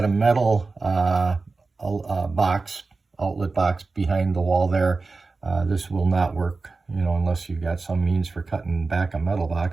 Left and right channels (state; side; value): quieter; left; 3.9 dB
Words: a metal outlet box behind the wall there, this will not work, unless you've got some means for cutting back a metal